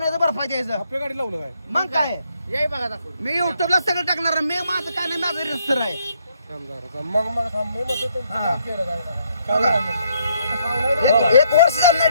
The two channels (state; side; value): inverted; both; correlation -0.70